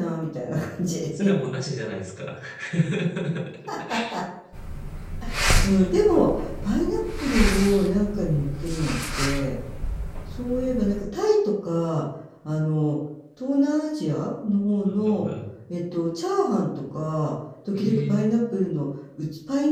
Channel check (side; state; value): both; identical; correlation 1.00